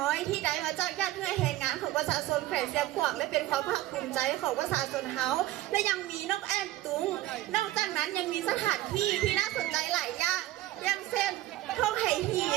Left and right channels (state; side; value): quieter; left; 15.6 dB